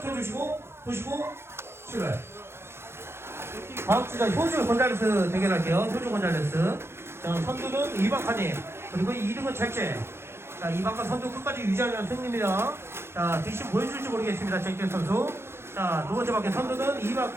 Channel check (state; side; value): late; left; 0.12 ms